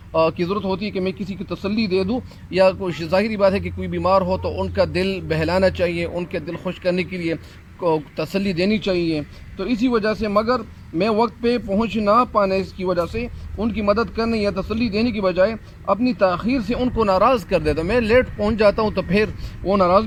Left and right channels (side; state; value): both; identical; correlation 1.00